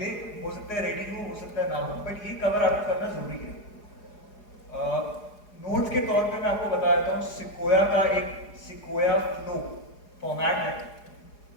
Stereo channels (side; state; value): right; late; 4.8 ms